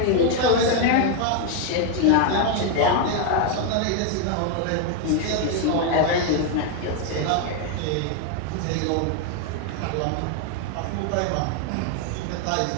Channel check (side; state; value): both; different; correlation 0.01